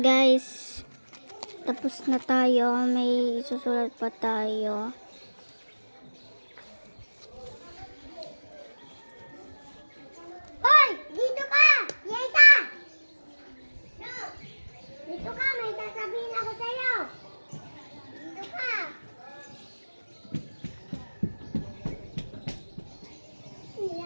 guys. Tapos na tayo. May susulat pa tayo. Hoy! Dito ka! Yesa! No! Dito ka! May sasabihin ako sa'yo! Dito ka!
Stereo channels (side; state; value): both; inverted; correlation -1.00